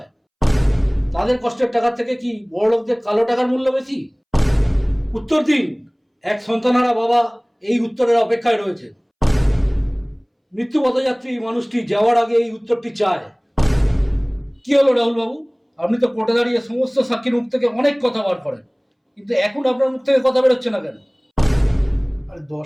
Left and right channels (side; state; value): both; identical; correlation 1.00